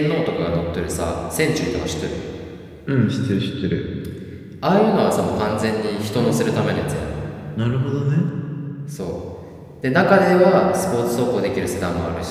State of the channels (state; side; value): identical; both; correlation 1.00